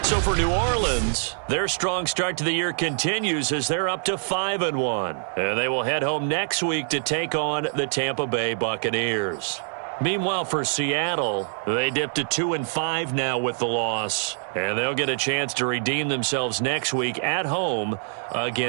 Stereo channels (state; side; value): silent; left; 62 dB below the other